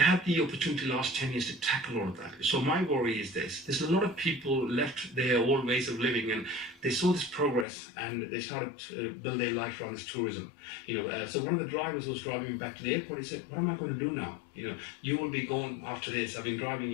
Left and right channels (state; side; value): drops out; right; at 7.7 s